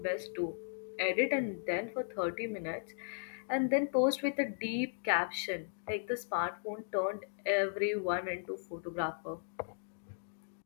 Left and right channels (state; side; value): silent; right; digital silence